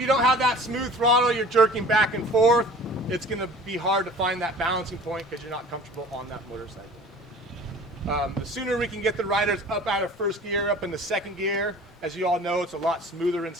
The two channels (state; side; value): normal; both; correlation 0.44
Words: don't have that smooth throttle, you're jerking back and forth, it's going to be hard to find that balancing point because you're not comfortable on that motorcycle. The sooner we can get the riders up out of first gear, up into second gear, as you all know, it's a lot smoother in